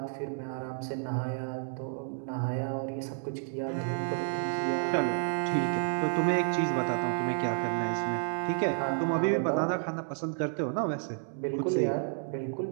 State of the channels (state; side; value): silent; left; 57 dB below the other